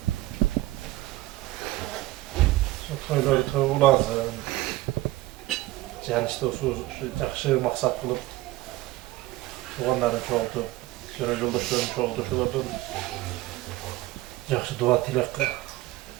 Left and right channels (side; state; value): left; quieter; 17.6 dB